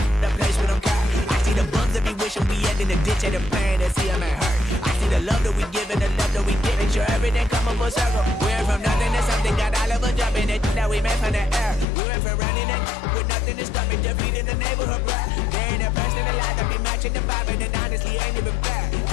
place with them car. I see the bums that be wishing we end in the ditch and the pain that see them ain't hurt. I see the love that we give and the love that we give. Make sure everything come up full circle. We went from nothing to something, got all of us jumping it that we made from the air. We went from running it with nothing to stop it, just feeding the neighborhood bread. There ain't a person alive that be matching the vibe, and honestly ain't even fair.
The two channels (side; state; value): right; drops out; at 11.9 s